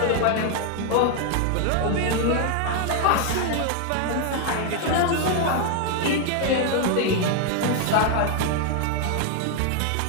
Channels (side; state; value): both; different; correlation 0.00